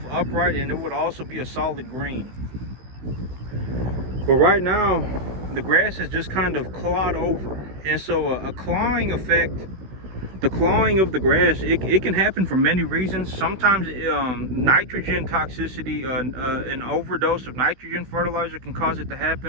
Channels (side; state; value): left; late; 16 ms